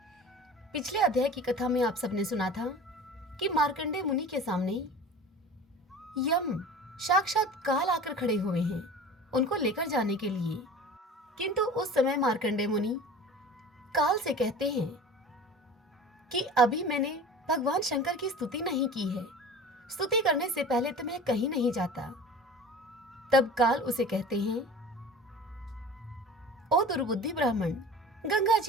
पिछले अध्याय की कथा में आप सबने सुना था कि मार्कंडेय मुनि के सामने यम साक्षात काल आकर खड़े हुए हैं उनको लेकर जाने के लिए। किंतु उस समय मार्कंडेय मुनि काल से कहते हैं कि अभी मैंने भगवान शंकर की स्तुति नहीं की है, स्तुति करने से पहले तो मैं कहीं नहीं जाता। तब काल उसे कहते हैं, ओ दुर्बुद्धि ब्राह्मण, गंगा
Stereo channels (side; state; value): both; normal; correlation 0.38